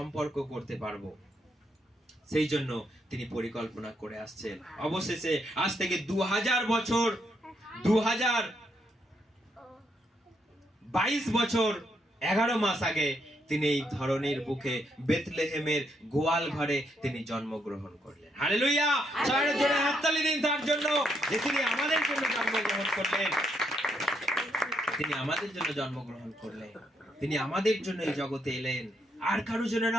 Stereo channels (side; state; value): both; normal; correlation 0.77